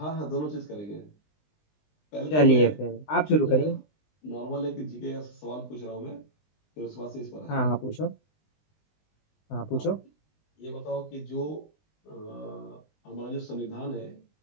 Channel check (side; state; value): right; late; 20 ms